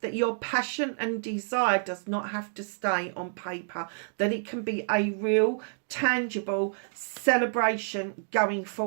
that your passion and desire does not have to stay on paper, that it can be a real, tangible celebration going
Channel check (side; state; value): left; silent; digital silence